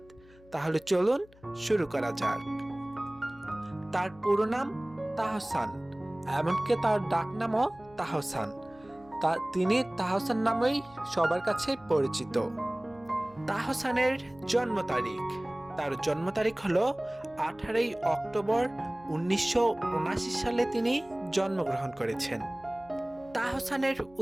তাহলে চলুন শুরু করা যাক। তার পুরো নাম তাহসান, এমনকি তার ডাকনামও তাহসান। তিনি তাহসান নামেই সবার কাছে পরিচিত। তাহসানের জন্ম তারিখ, তার জন্ম তারিখ হলো 18 অক্টোবর 1979 সালে তিনি জন্মগ্রহণ করেছেন। তাহসানের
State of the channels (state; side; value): noise; left; hum, 26 dB below the sound